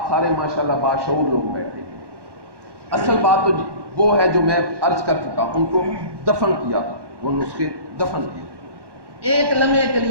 سارے ماشاءاللہ باشعور لوگ بیٹھے ہیں، اصل بات تو وہ ہے جو میں عرض کر چکا، ان کو دفن کیا تھا، وہ نسخے دفن کیے۔ ایک لمحے کے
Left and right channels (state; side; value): late; left; 1.1 ms